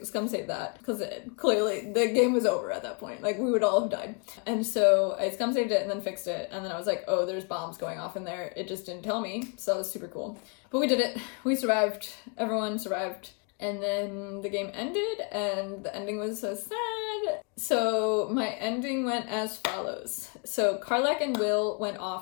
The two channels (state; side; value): quieter; right; 36.2 dB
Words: scum save that, because clearly the game was over at that point. Like, we would all have died. And so I scum saved it and then fixed it, and then I was like, oh, there's bombs going off in there. It just didn't tell me, so that was super cool. But we did it. We survived. Everyone survived. And then the game ended, and the ending was so sad. So my ending went as follows. So Karlach and Will went